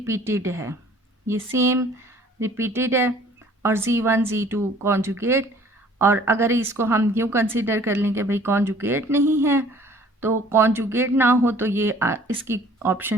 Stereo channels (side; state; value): both; normal; correlation 0.54